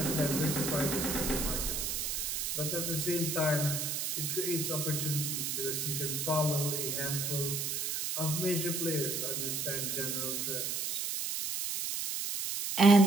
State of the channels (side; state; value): right; noise; hiss, 1 dB below the sound